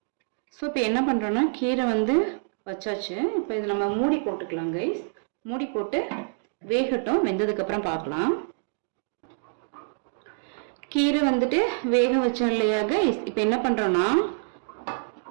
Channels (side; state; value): left; silent; digital silence